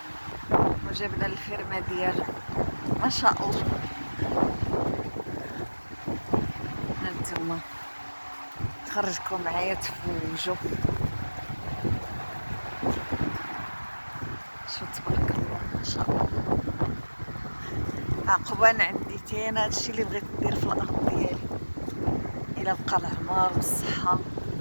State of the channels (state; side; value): inverted; both; correlation -1.00